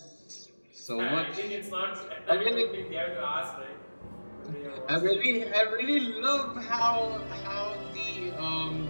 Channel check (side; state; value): both; inverted; correlation -1.00